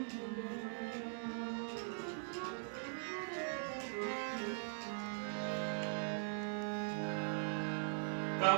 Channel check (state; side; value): silent; left; digital silence